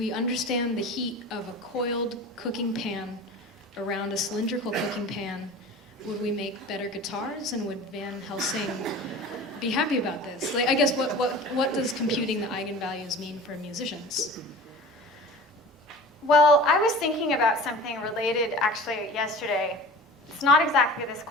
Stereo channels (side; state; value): both; normal; correlation 0.38